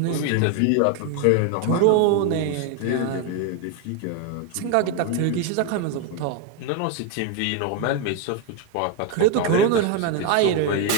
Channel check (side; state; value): both; different; correlation 0.01